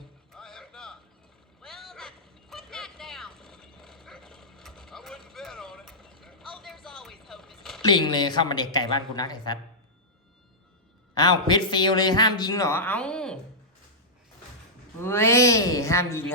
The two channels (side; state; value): both; normal; correlation -0.13